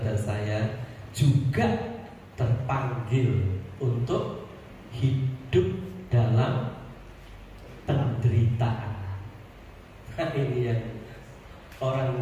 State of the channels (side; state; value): both; identical; correlation 1.00